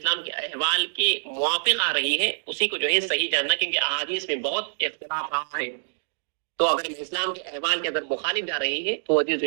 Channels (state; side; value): silent; left; digital silence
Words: کے احوال کے موافق آ رہی ہے اسی کو جو ہے صحیح جاننا، کیونکہ احادیث میں بہت اختلاف رہا ہے، تو اگر اسلام کے احوال کے اندر مخالف جا رہی ہے تو حدیث جو